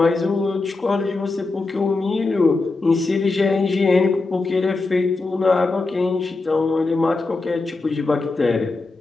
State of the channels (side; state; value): right; quieter; 3.5 dB